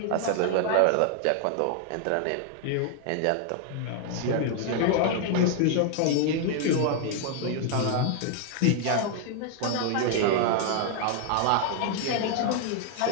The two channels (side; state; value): both; different; correlation 0.00